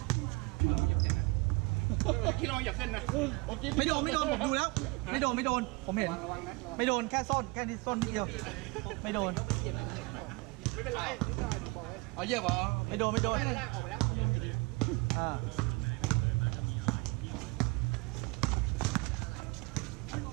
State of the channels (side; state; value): left; quieter; 25.8 dB